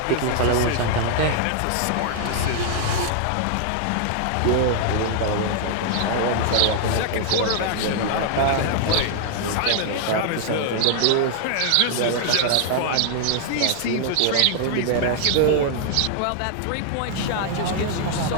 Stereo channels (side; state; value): both; different; correlation -0.01